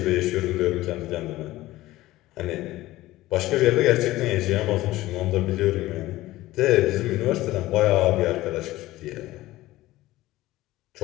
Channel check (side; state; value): right; quieter; 17.0 dB